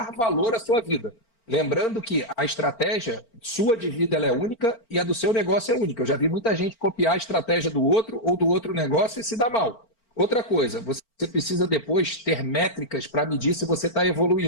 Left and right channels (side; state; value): right; late; 4.4 ms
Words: valor à sua vida. Lembrando que a estratégia sua de vida ela é única e a do seu negócio é única. Eu já vi muita gente copiar a estratégia do outro ou do outro negócio e se dá mal. Outra coisa, você precisa depois ter métricas para medir se você está